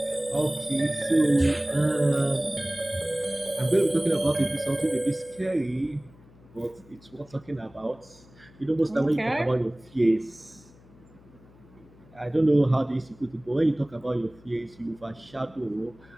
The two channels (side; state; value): left; noise; hum, 25 dB below the sound